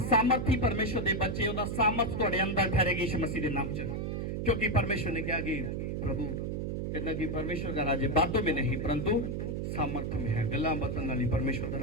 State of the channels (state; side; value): noise; right; hum, 2 dB below the sound